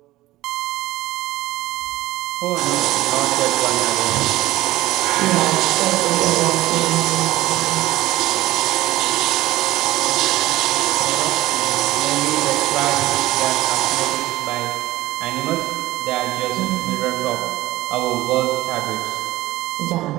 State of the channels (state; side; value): quieter; left; 16.9 dB